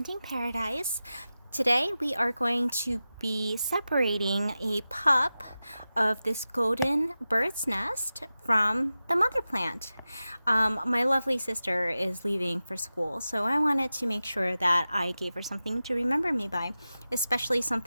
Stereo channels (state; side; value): inverted; both; correlation -0.94